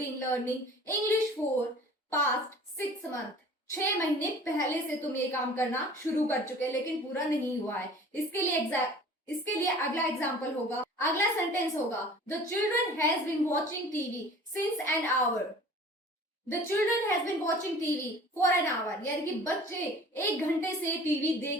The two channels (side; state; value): both; normal; correlation 0.46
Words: learning English for past 6 months, 6 महीने पहले से तुम ये काम करना शुरू कर चुके लेकिन पूरा नहीं हुआ है। इसके लिए अगला एग्जाम्पल होगा, अगला सेंटेंस होगा the children has been watching TV since an hour. The children has been watching TV for an hour, यानी कि बच्चे 1 घंटे से टीवी